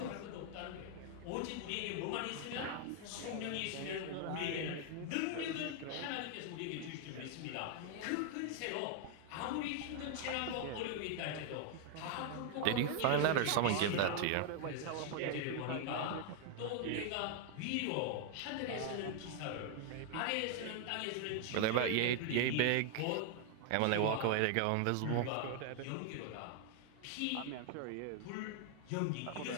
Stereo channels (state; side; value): different; both; correlation 0.00